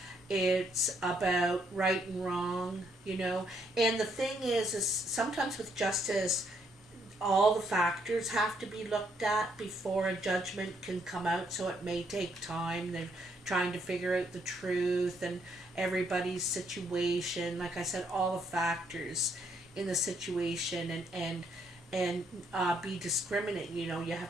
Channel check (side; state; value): both; normal; correlation 0.72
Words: It's about right and wrong, you know. And the thing is sometimes with justice, all the factors have to be looked at before a judgment can come out, so it may take time. They're trying to figure out the truth and everybody's situation. Like I said, all the factors in the situation and be discriminate. You know, you